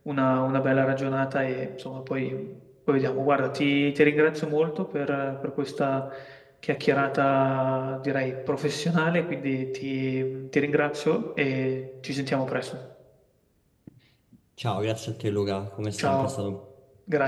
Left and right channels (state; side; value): identical; both; correlation 1.00